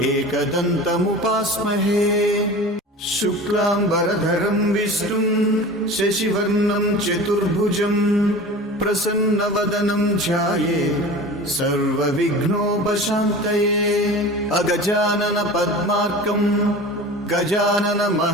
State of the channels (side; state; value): both; normal; correlation 0.36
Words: एकदन्तमुपास्महे शुक्लाम्बरधरं विष्णुं शशिवर्णं चतुर्भुजं प्रसन्नवदनं ध्यायेत् सर्वविघ्नोपशान्तये अगजानन पद्मार्कं